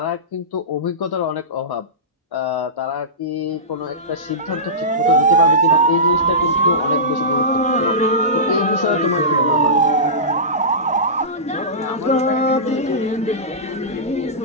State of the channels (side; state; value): both; normal; correlation -0.19